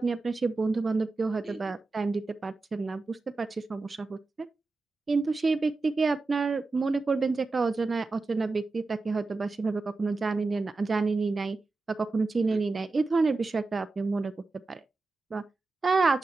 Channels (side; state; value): left; quieter; 3.6 dB